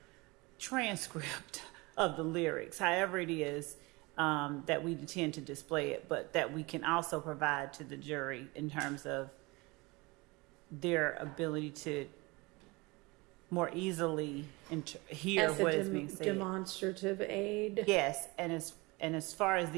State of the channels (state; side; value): quieter; left; 24.6 dB